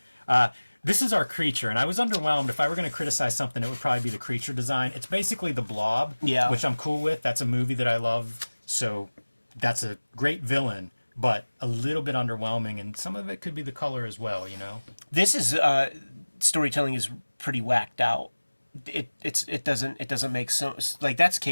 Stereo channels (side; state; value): both; inverted; correlation -1.00